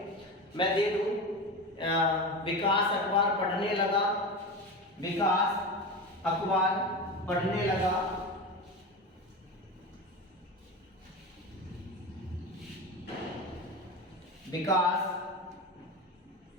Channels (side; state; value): both; normal; correlation 0.25